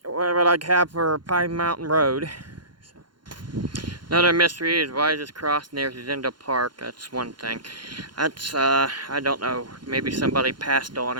what I have for Pine Mountain Road. So. Another mystery is why is this cross near Zindel Park? That's one thing. That's I don't know. Maybe somebody passed on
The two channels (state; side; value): late; left; 0.71 ms